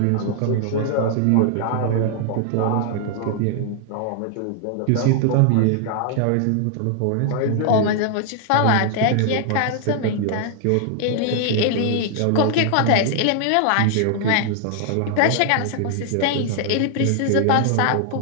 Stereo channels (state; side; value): different; both; correlation 0.00